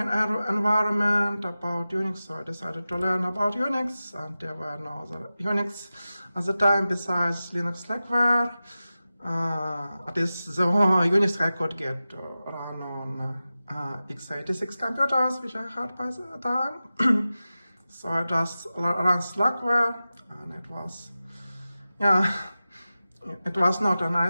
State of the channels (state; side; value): inverted; both; correlation -0.95